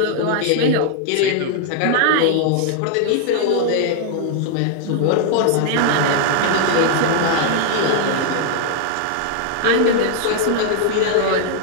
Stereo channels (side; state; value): both; different; correlation 0.00